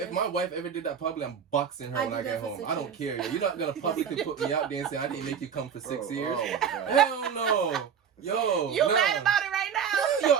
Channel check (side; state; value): left; quieter; 7.4 dB